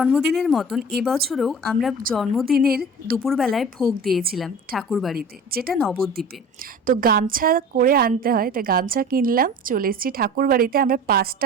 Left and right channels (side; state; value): both; normal; correlation 0.39